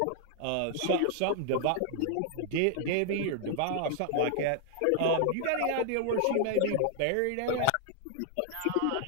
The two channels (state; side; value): different; both; correlation 0.00